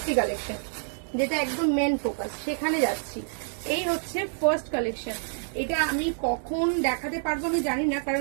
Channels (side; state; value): left; silent; digital silence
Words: কালেকশন, যেটা একদম মেন ফোকাস, সেখানে যাচ্ছি। এই হচ্ছে ফার্স্ট কালেকশন। এটা আমি কখন দেখাতে পারবো আমি জানি না, কারণ